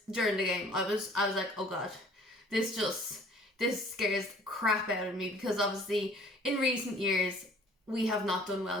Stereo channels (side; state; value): both; normal; correlation 0.53